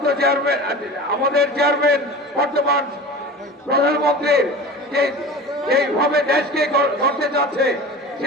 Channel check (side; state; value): both; normal; correlation 0.35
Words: চেয়ারম্যান, আমাদের চেয়ারম্যান বর্তমান প্রধানমন্ত্রীর এইভাবে দেশকে করতে যাচ্ছে,